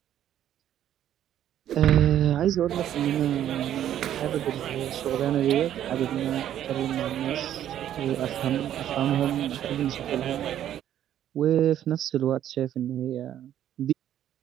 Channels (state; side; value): quieter; left; 11.1 dB